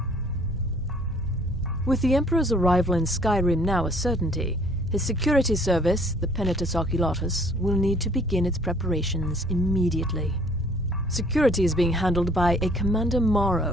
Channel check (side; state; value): both; normal; correlation 0.57